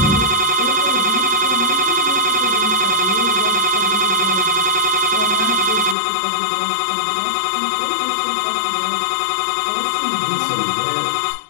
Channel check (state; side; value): drops out; right; at 6.0 s